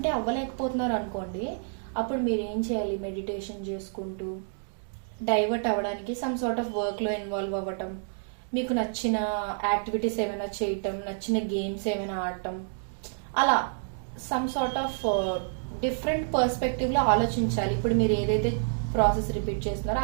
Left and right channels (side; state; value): left; silent; digital silence